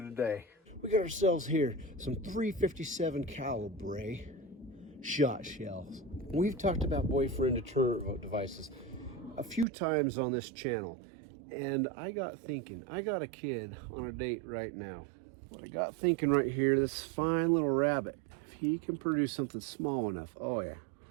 We got ourselves here some 357 caliber shot shells. We've talked about boyfriend deterrent devices a few times on this channel, and I got thinking, I got a kid on a date right now. I got thinking right here, this fine little rabbit, if he can produce something small enough, oh yeah,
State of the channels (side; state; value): left; drops out; at 9.7 s